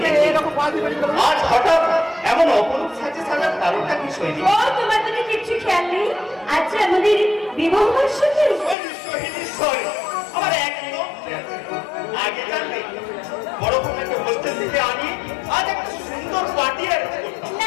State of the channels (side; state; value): right; drops out; at 8.8 s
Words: আজ হঠাৎ এমন অপরূপ সাজে সাজার কারণটা কি সৈনিক? ও তোমার তো কিছু খেয়াল নেই। আচ্ছা আমাদের বিবাহ বার্ষিকী। আমার একদম আগে জানলে বড় কোনো একটা হোস্টেল থেকে আনি আজ একটা সুন্দর পার্টি অ্যারেঞ্জ করতাম।